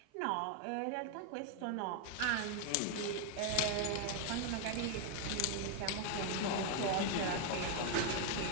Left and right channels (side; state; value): both; different; correlation 0.01